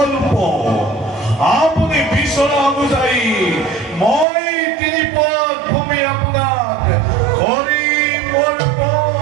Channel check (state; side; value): drops out; left; at 4.2 s